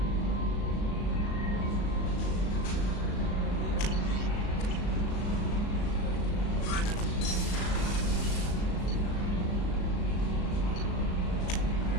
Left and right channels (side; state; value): right; late; 37 ms